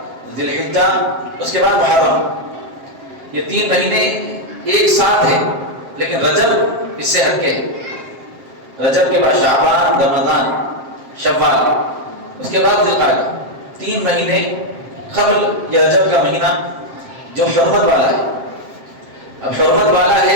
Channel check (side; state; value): left; late; 7.5 ms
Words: ذوالحجہ، اس کے بعد محرم. یہ 3 مہینے ایک ساتھ ہیں، لیکن رجب اس سے ہٹ کے ہے. رجب کے بعد شعبان، رمضان، شوال، اس کے بعد ذوالقعدہ. 3 مہینے قبل یہ رجب کا مہینہ جو حرمت والا ہے. اب حرمت والا